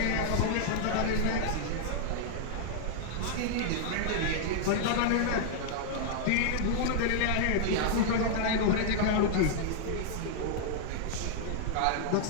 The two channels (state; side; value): different; both; correlation -0.01